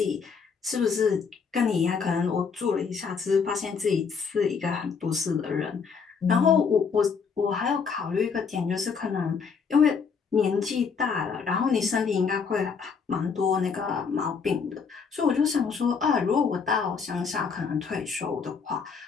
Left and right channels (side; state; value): right; quieter; 5.8 dB